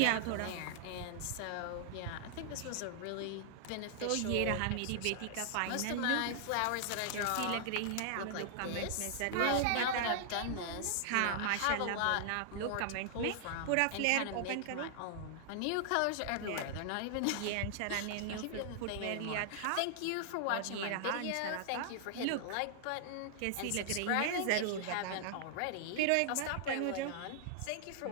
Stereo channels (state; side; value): different; both; correlation -0.01